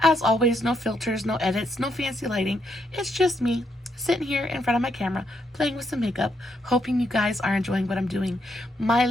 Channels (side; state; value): both; normal; correlation 0.77